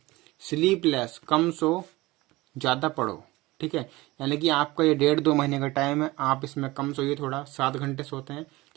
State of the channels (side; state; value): left; quieter; 20.3 dB